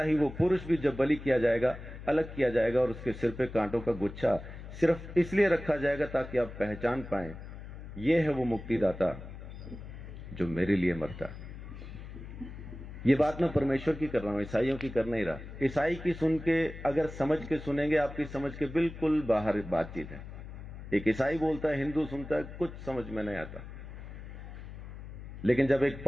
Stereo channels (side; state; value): left; noise; hum, 12 dB below the sound